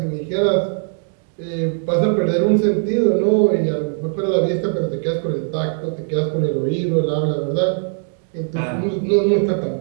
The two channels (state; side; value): silent; left; 55 dB below the other